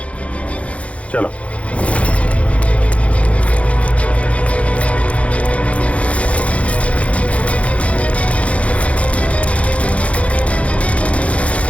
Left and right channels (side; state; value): right; late; 0.064 ms